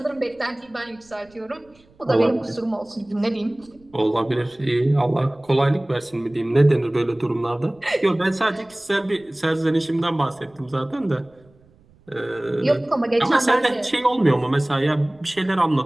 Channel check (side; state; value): right; noise; rumble, 30 dB below the sound